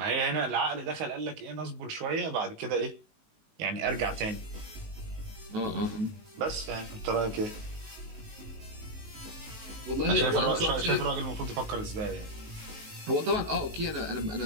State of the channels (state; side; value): late; left; 19 ms